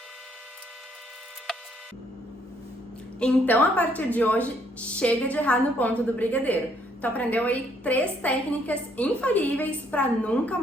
Então, a partir de hoje, chega de errar no ponto do brigadeiro. Tu aprendeu aí 3 técnicas infalíveis para nunca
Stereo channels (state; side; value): normal; both; correlation 0.68